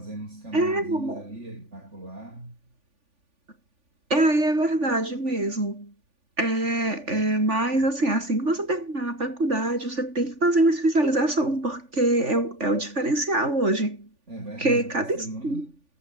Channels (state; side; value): late; left; 3.5 ms